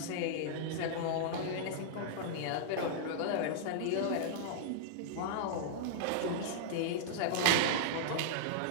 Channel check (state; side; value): different; both; correlation -0.02